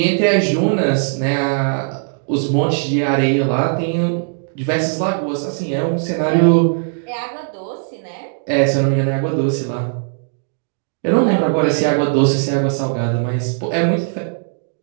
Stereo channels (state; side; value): silent; left; 67 dB below the other